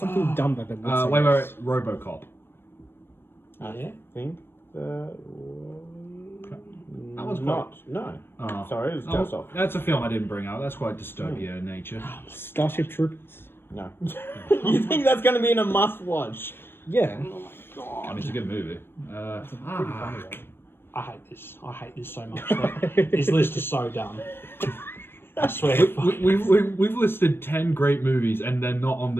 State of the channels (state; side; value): late; right; 0.11 ms